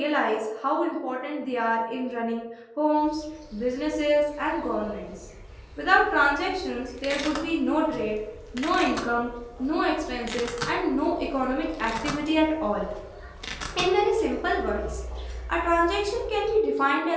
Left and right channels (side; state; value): both; identical; correlation 1.00